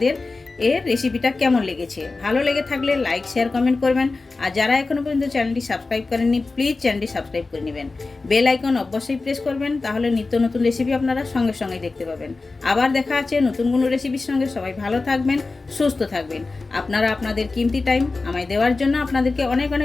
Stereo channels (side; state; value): right; quieter; 3.7 dB